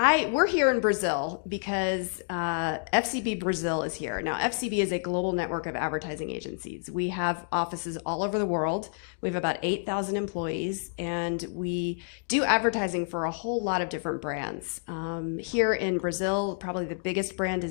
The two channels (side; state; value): right; silent; digital silence